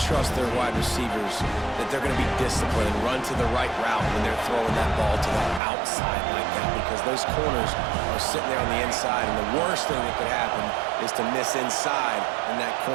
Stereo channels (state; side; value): drops out; left; at 5.6 s